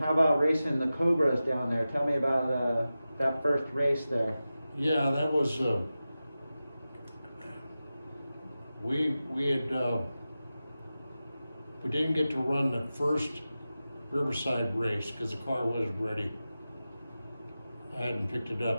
how about racing the Cobras down there? Tell me about that first race there. Yeah, that was, we didn't get to run the first Riverside race because the car wasn't ready. I hadn't picked it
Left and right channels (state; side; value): inverted; both; correlation -0.94